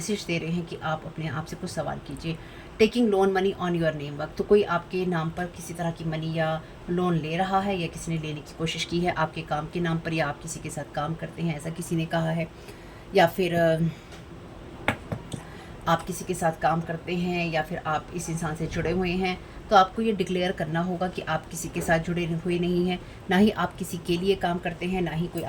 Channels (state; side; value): identical; both; correlation 1.00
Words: दे रहे हैं कि आप अपने आप से कुछ सवाल कीजिए, taking loan money on your name work, तो कोई आपके नाम पर किसी तरह की मनी या लोन ले रहा है या किसी ने लेने की कोशिश की है आपके काम के नाम पर, या आप किसी के साथ काम करते हैं ऐसा किसी ने कहा है, या फिर आप किसी के साथ काम करते हैं या फिर आप इस इंसान से जुड़े हुए हैं, तो आपको ये डिक्लेयर करना होगा कि आप किसी के साथ जुड़े हुए नहीं हैं, ना ही आप किसी के लिए काम करते हैं, ना ही कोई